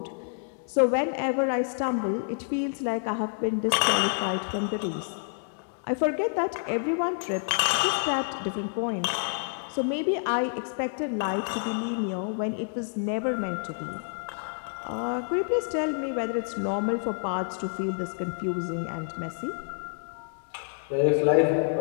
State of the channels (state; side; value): silent; right; digital silence